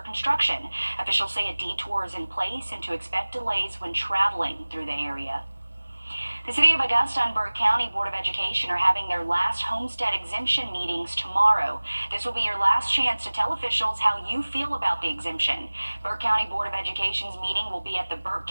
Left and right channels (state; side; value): inverted; both; correlation -1.00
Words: Officials say a detour is in place and to expect delays when traveling through the area. The City of Augusta and Burke County Board of Education are having their last homestead exemption meetings tomorrow. This will be your last chance to tell officials how you feel about the exemption. Burke County Board of Education's meeting will be at the Burke